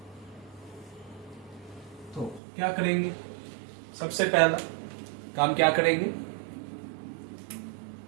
तो क्या करेंगे, सबसे पहला काम क्या करेंगे,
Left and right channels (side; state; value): left; drops out; at 2.4 s